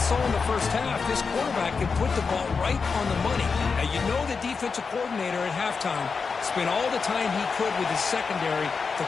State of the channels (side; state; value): right; quieter; 5.1 dB